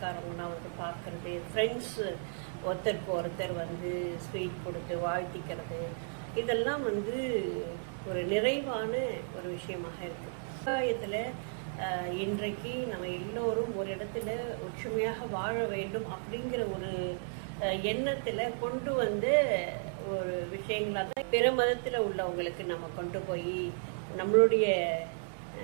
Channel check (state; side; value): silent; left; 55 dB below the other